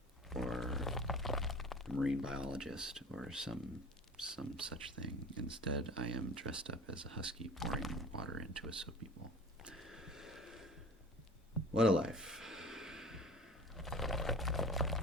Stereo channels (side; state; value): both; normal; correlation 0.40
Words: or a marine biologist or some such thing. Instead, I am dressed up as a husky pouring water into a soapy bowl. What a life.